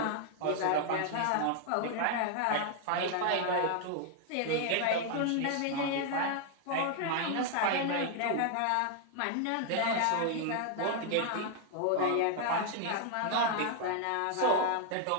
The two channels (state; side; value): different; both; correlation 0.00